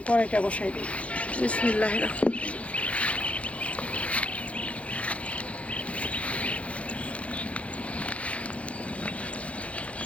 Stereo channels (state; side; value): late; right; 0.064 ms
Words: কড়াইটা বসাই দিই। বিসমিল্লাহির রহমানির রহিম।